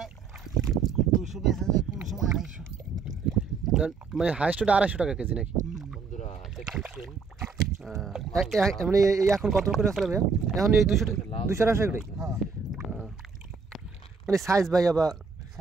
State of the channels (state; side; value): quieter; left; 5.1 dB